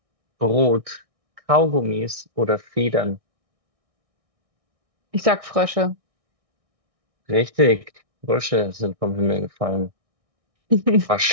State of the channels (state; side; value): late; left; 1.6 ms